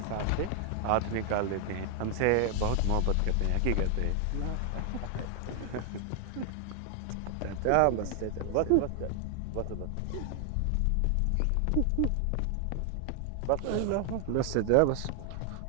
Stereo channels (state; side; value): different; both; correlation 0.00